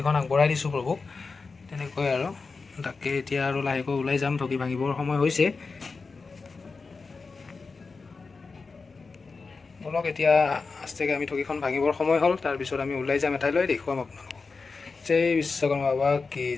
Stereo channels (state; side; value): quieter; right; 4.4 dB